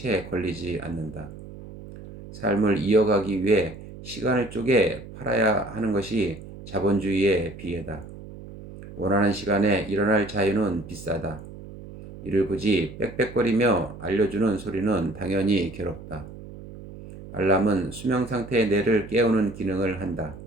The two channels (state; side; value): noise; right; hum, 15 dB below the sound